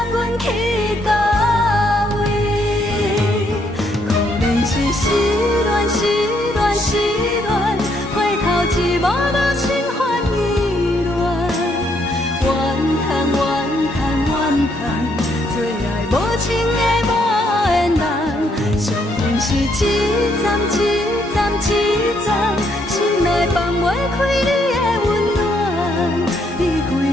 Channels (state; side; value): normal; both; correlation 0.72